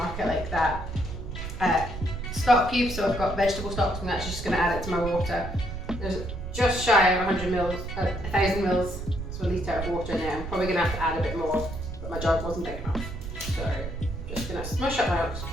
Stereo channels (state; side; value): noise; right; rumble, 7 dB below the sound